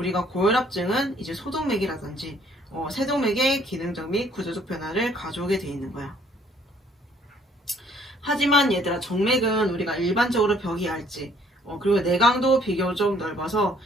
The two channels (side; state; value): both; normal; correlation 0.62